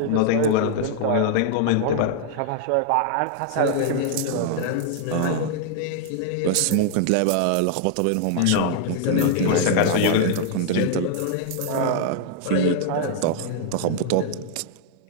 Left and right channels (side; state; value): both; different; correlation 0.00